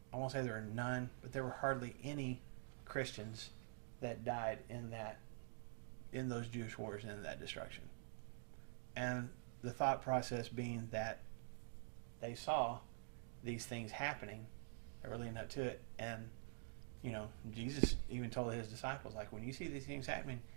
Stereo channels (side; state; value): left; silent; digital silence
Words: I won't say there were none, but there were hardly any Christians that died in those Jewish wars and in that destruction. And the thought process being that they saw these things happening that were leading up to it. And, Jesus even told his disciples, like, when you see these things happening,